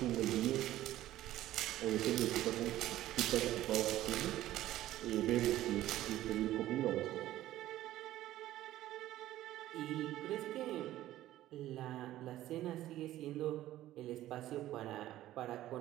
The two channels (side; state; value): left; quieter; 14.3 dB